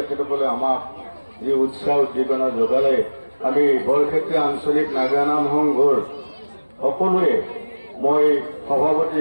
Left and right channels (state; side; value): inverted; both; correlation -1.00